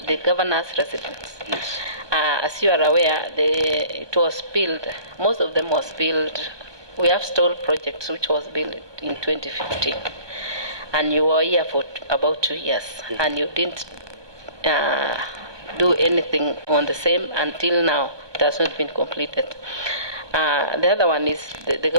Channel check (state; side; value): late; left; 1.2 ms